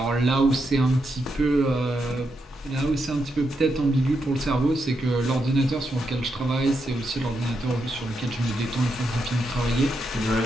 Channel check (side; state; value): both; normal; correlation 0.83